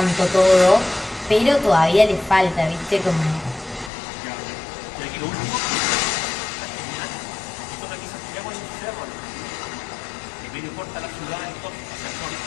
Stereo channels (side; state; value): right; drops out; at 3.9 s